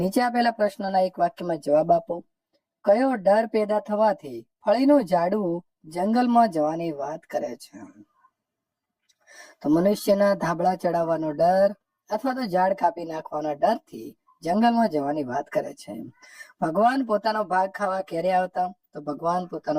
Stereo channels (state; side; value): identical; both; correlation 1.00